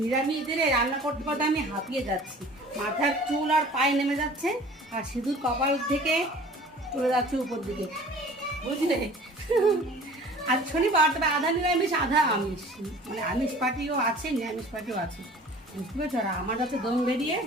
নিরামিষ দিনে রান্না করতে করতে আমি হাঁপিয়ে যাচ্ছি। মাথার চুল আর পায়ে নেমে যাচ্ছে, আর সিঁদুর কপাল থেকে চলে যাচ্ছে উপর দিকে, বুঝলে? আজ শনিবার, তবে আধা নিরামিষ আধা আমিষ, মানে আমিষ পাটিও আছে, নিরামিষ পাটিও আছে, বুঝতে পেরেছো? আর আমার কাছে দম বেরিয়ে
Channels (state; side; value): normal; both; correlation 0.46